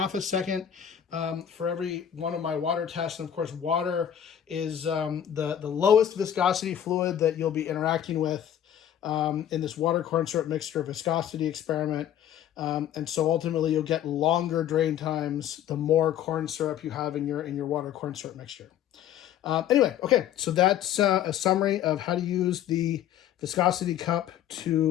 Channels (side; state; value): right; quieter; 10.3 dB